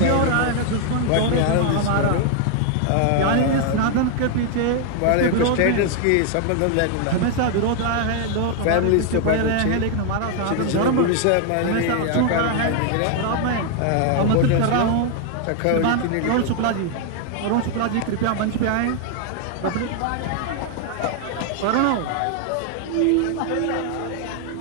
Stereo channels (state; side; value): different; both; correlation 0.00